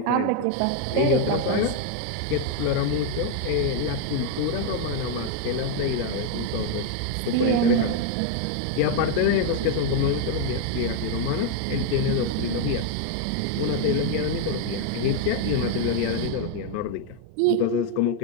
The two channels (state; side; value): different; both; correlation 0.01